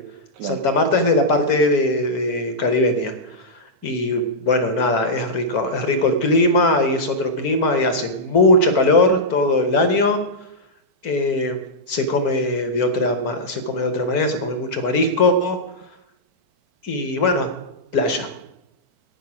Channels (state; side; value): late; left; 4.5 ms